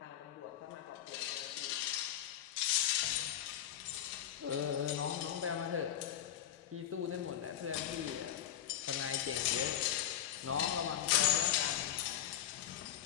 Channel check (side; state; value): right; quieter; 10.8 dB